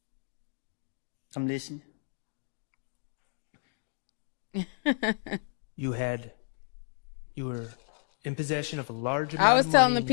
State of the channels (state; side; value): silent; right; digital silence